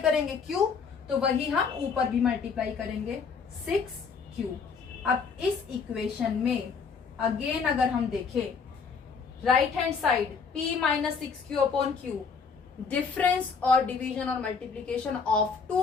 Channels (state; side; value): quieter; right; 5.5 dB